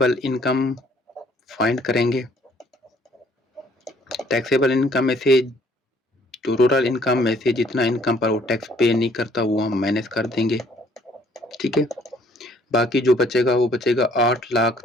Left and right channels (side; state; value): both; normal; correlation 0.61